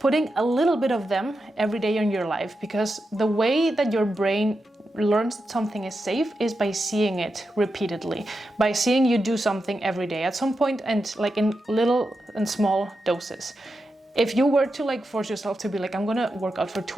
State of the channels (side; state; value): both; normal; correlation 0.88